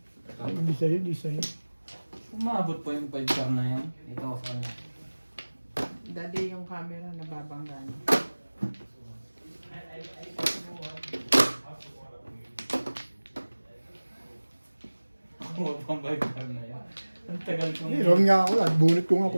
Ay, hindi sa'yo, hindi sa'yo. Umabot po yung 5 car na yan. Ito ako sa kanya. Daddy yung camera nababangga niya. Kuha pang 5 car na yan. Ang tagal kong... Eh, round nga ako at bunot ko nga ako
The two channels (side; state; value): both; inverted; correlation -1.00